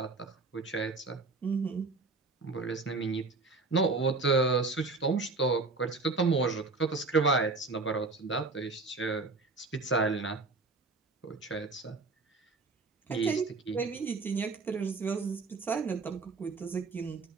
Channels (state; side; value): quieter; left; 3.8 dB